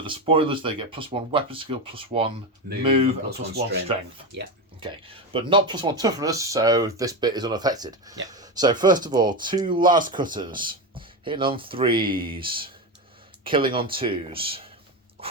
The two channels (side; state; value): both; normal; correlation 0.16